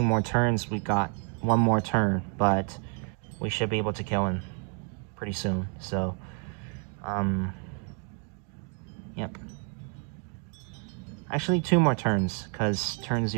more turns we got. One more turn, but we should be able to kill him pretty soon. So, yep. Actually, 2 more turns, because turn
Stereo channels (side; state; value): left; quieter; 39.9 dB